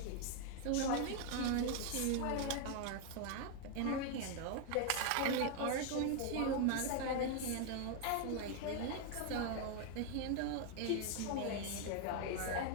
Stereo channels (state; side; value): different; both; correlation 0.01